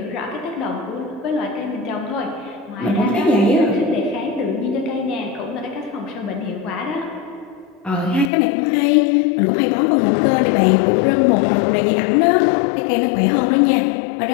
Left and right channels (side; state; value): right; drops out; at 8.3 s